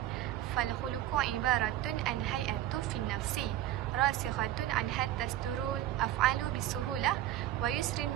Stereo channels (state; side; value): quieter; left; 13.4 dB